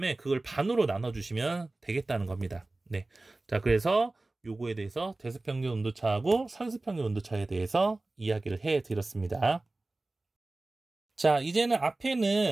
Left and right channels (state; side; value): quieter; left; 3.0 dB